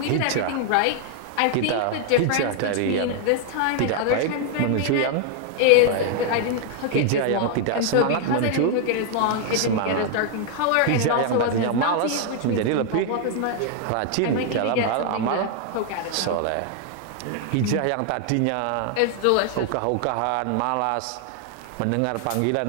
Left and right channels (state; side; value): different; both; correlation 0.00